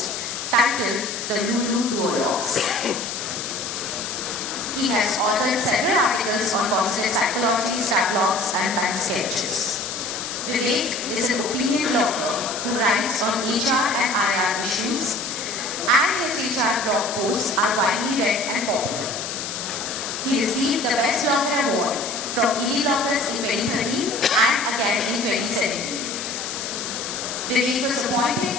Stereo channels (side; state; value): left; noise; hiss, 6 dB below the sound